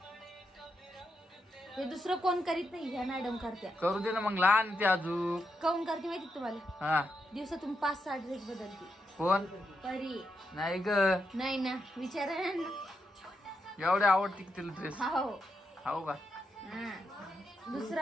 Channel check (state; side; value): normal; both; correlation 0.83